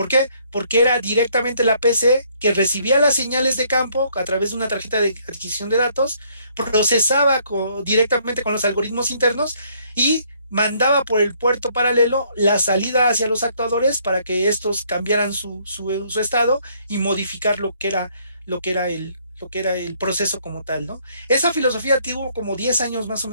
qué? Porque era directamente la PC que recibía las señales de campo a través de una tarjeta de adquisición de datos, procesaba directamente con los algoritmos internos y mandaba por el puerto paralelo la salida hacia los actuadores para que estos cambiaran su estado y modificar lo que era el proceso como tal, ¿no? Esa filosofía tuvo como 10 años más o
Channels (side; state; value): both; inverted; correlation -0.66